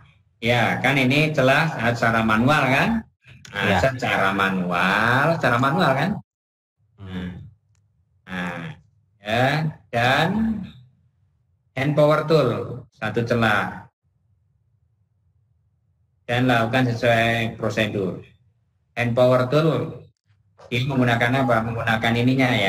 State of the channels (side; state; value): both; identical; correlation 1.00